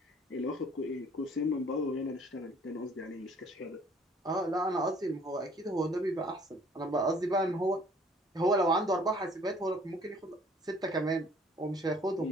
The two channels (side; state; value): both; normal; correlation 0.57